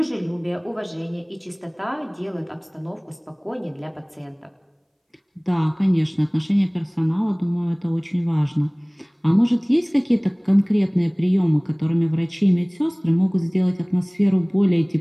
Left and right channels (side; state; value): both; identical; correlation 1.00